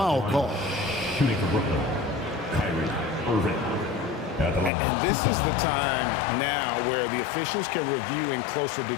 call. Shooting for Brooklyn, Kyrie Irving. At the line. And this is the time now where the officials can review in closer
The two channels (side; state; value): right; drops out; at 4.7 s